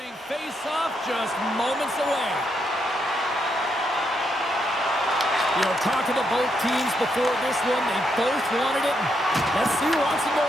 face-off just moments away. You know, talking to both teams before this one, they both wanted it. Let's see who wants it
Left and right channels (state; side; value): normal; both; correlation 0.78